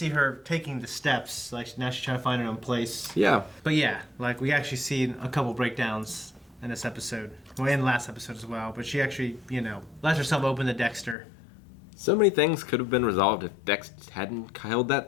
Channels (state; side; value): drops out; right; at 11.2 s